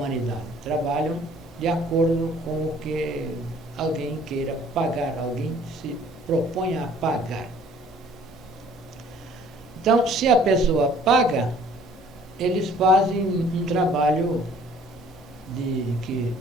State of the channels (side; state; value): both; normal; correlation 0.55